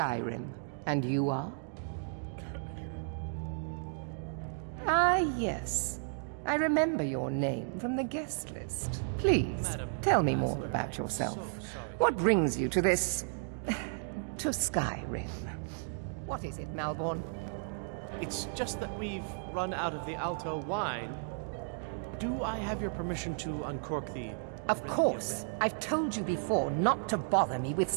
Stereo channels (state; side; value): silent; left; digital silence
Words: And you are? Ah, yes. I remember your name from the guest list. Please, Madam tell me more Ambassador, about I'm yourself. so sorry What brings you to this... to Skyrim? What is it, Malborn? It's just that we've run out of the Alto wine. Do I have your permission to uncork the... Of course. I've told you before not to bother me with